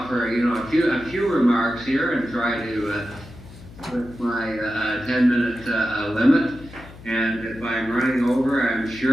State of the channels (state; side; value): noise; left; hum, 18 dB below the sound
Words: a few remarks here and try to with my 10-minute limit. And if I'm running over, I'm